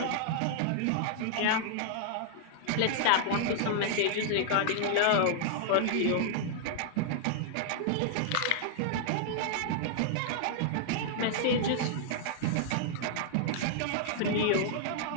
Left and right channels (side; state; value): both; different; correlation -0.01